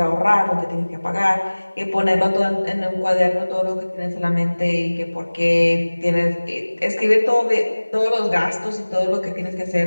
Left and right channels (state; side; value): inverted; both; correlation -1.00